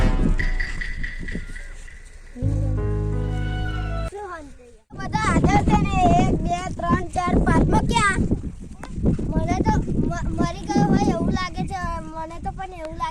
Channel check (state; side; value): identical; both; correlation 1.00